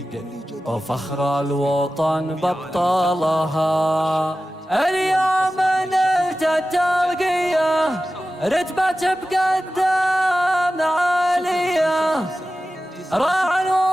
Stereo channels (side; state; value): both; normal; correlation 0.94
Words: وفخر الوطن بطلها. اليوم نلت الترقية، رتبة بقدام عالية، راعي